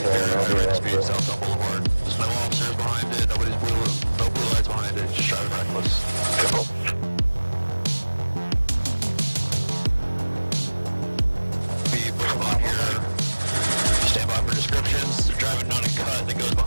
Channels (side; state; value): both; inverted; correlation -1.00